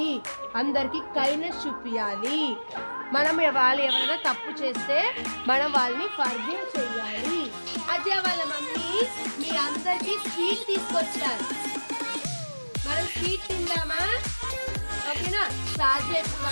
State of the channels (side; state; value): both; inverted; correlation -1.00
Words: అందరికి కైండ్నెస్ చూపించాలి. మనం వాళ్ళు ఎవరైనా తప్పు చేస్తే మనం వాళ్ళని ఫర్గివ్ చేయాలి. అజయ్ వాళ్ళ మమ్మీ మీ అందరికి స్వీట్ తీసుకొచ్చారు. మనం స్వీట్ తిందామా? ఓకేనా? సాధ్య